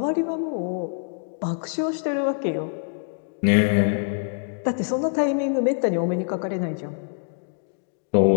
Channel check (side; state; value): right; silent; 61 dB below the other